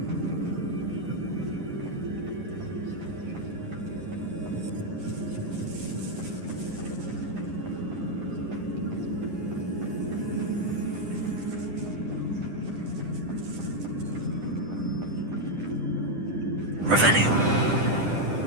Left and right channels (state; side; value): late; left; 10 ms